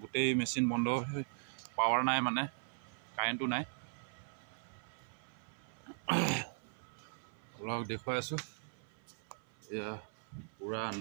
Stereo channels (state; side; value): silent; left; 52 dB below the other